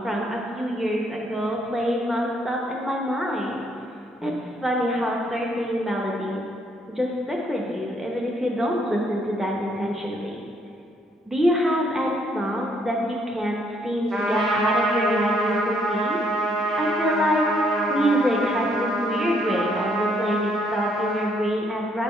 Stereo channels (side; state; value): both; normal; correlation 0.69